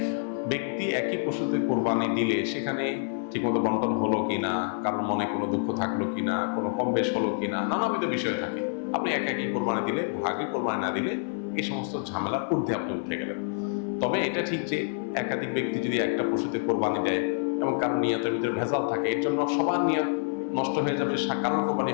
ব্যক্তি একই পশুতে কোরবানি দিলে সেখানে ঠিকমতো বন্টন হলো কিনা, কারোর মনে কোনো দুঃখ থাকলো কিনা, কোনো কম বেশ হলো কিনা, নানাবিধ বিষয় থাকে। আপনি একাকি কোরবানি দিলে, ভাগে কোরবানি না দিলে এই সমস্ত ঝামেলার ঊর্ধ্বে আপনি উঠে গেলেন। তবে এটা ঠিক যে একাধিক ব্যক্তি যদি একটা পশুতে কোরবানি দেয় এবং কারোর নিয়তের ভিতরে ভেজাল থাকে, এর জন্য সবার নিয়ত নষ্ট হয়ে যাবে, কারোর কোরবানি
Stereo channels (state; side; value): silent; right; 60 dB below the other